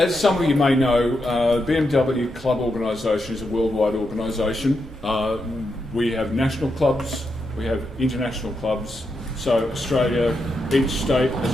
some of you may know, BMW Club organisation is a worldwide organisation. We have national clubs, we have international clubs. So Australia, each state has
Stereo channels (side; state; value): both; normal; correlation 0.84